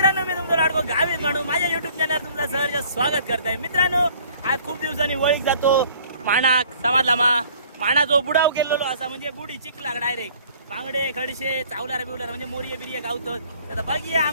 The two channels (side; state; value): both; inverted; correlation -0.55